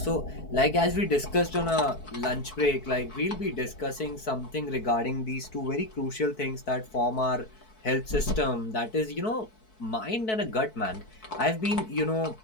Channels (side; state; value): right; late; 4.6 ms